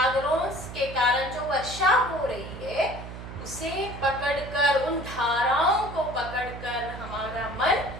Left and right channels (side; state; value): right; noise; hum, 11 dB below the sound